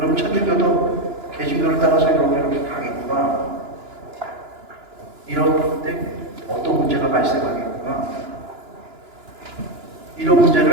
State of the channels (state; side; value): late; left; 2.9 ms